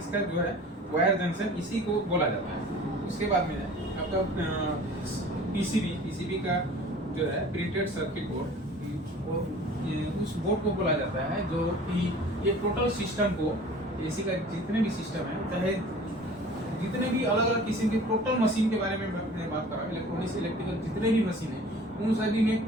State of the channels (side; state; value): both; normal; correlation 0.45